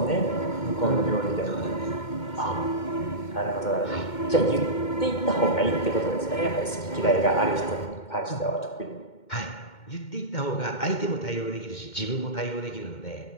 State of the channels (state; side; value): late; right; 2.2 ms